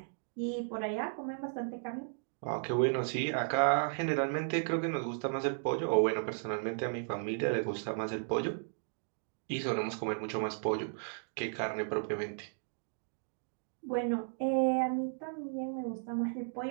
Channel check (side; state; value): left; silent; digital silence